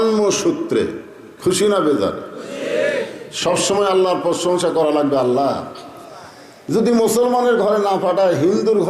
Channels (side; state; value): both; identical; correlation 1.00